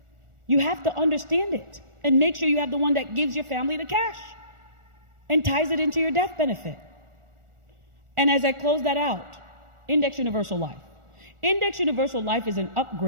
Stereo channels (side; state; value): left; late; 1.4 ms